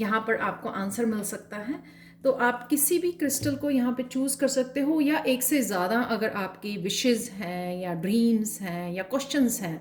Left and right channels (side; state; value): both; identical; correlation 1.00